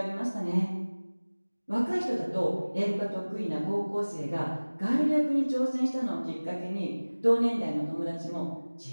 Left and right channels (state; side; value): inverted; both; correlation -1.00